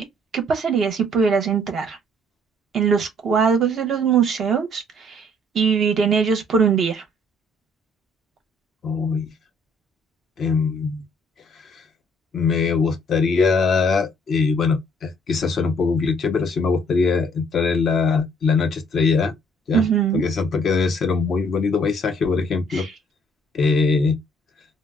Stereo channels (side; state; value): both; normal; correlation 0.62